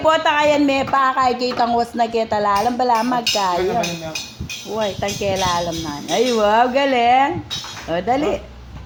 kayan me pa kay kitang was na kita lalam bala magkaya. Uy, tangkela alam na. Ay, wow, galing. O, dali.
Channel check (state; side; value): identical; both; correlation 1.00